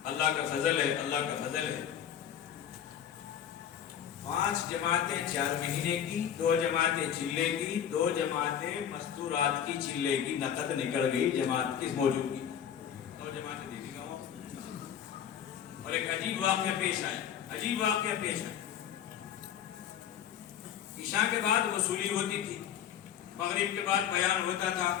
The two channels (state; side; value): quieter; right; 9.3 dB